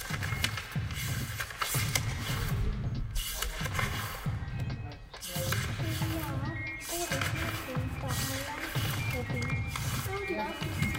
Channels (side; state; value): both; identical; correlation 1.00